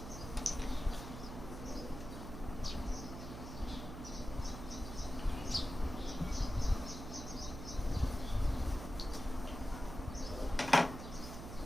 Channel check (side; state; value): right; noise; hum, 9 dB below the sound